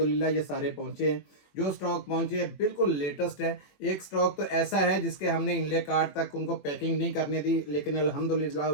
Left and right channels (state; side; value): late; right; 21 ms